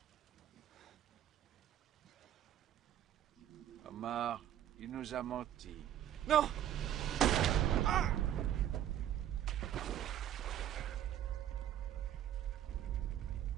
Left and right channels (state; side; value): quieter; left; 11.2 dB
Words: Omar, il nous a menti. Non! Ah!